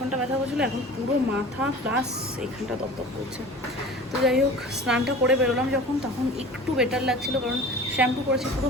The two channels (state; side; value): normal; both; correlation 0.40